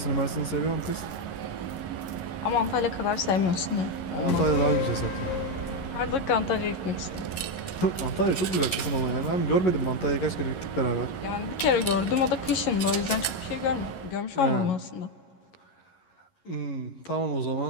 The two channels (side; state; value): right; late; 11 ms